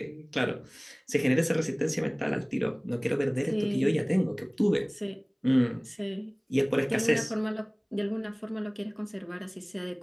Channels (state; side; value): identical; both; correlation 1.00